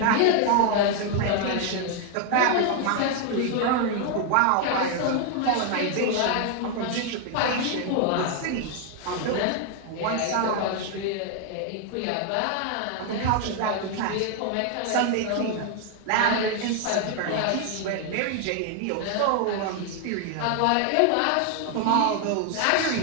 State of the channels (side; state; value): both; different; correlation 0.00